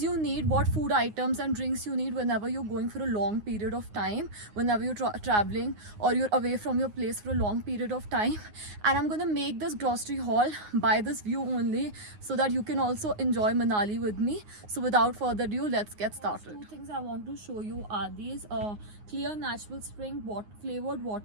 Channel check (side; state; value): left; late; 9.6 ms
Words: you need, what food items and drinks you need whenever you're going for a long period of time, whenever you're traveling or you're away from your place for a long period of time. And I'm gonna make this grocery haul by this view only, so that you can also enjoy Manali with me. So without further ado, let's get started. Two things I want to show you are these clear natural spring flavored